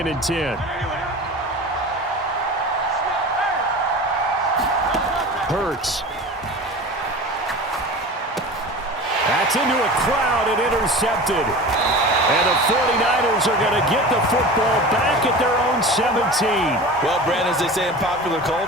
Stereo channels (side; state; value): both; normal; correlation 0.34